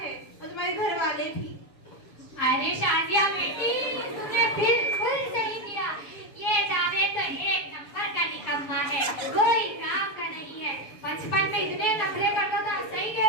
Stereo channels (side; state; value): right; late; 7.0 ms